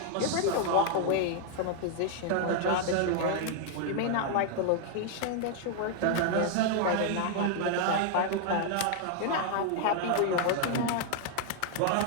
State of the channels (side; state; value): both; different; correlation 0.00